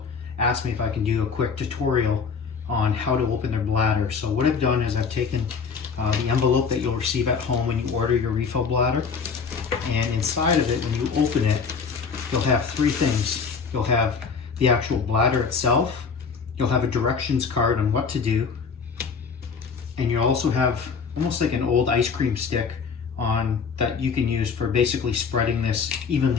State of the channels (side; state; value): right; quieter; 5.6 dB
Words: ask me if I can do a quick tutorial on how to open their bladder. So what I've done is I've taken the envelope that you'll receive at home when you order your refill bladder, and inside of it, when you open it, you'll have three things. You'll have the actual bladder itself, you'll have a directions card on what to do, and you'll also have almost like an old ice cream stick on that you can use for basically spreading this